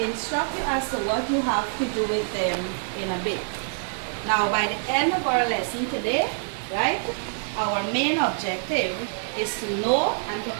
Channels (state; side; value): silent; left; digital silence